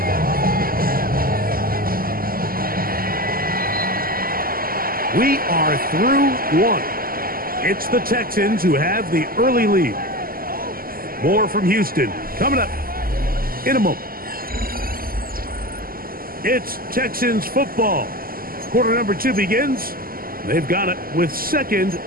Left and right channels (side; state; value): left; late; 0.42 ms